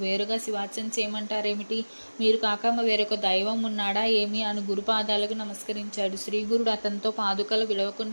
వేరుగా శివార్చన చేయమంటారేమిటి? మీరు కాక వేరొక దైవం ఉన్నాడా ఏమి అని గురుపాదాలకు నమస్కరించాడు. శ్రీగురుడు అతనితో పాదుకలు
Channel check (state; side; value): inverted; both; correlation -1.00